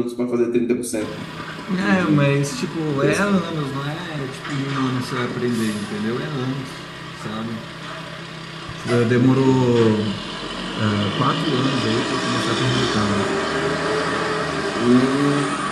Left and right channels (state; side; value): identical; both; correlation 1.00